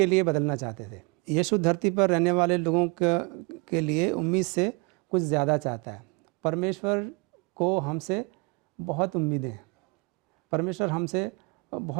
लिए बदलना चाहते थे। यीशु धरती पर रहने वाले लोगों के लिए उम्मीद से कुछ ज़्यादा चाहता है। परमेश्वर को हमसे बहुत उम्मीदें हैं, परमेश्वर हमसे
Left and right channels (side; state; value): left; quieter; 28.9 dB